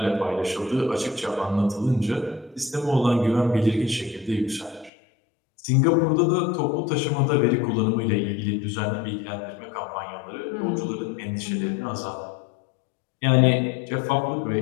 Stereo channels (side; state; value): right; drops out; at 4.9 s